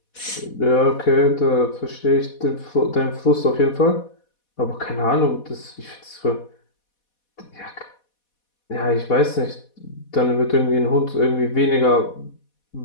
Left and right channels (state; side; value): late; right; 4.1 ms